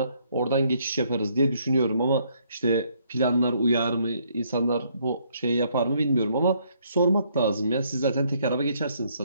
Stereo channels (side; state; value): both; inverted; correlation -0.69